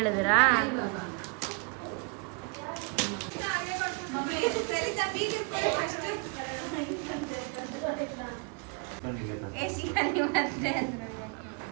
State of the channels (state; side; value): quieter; left; 33.9 dB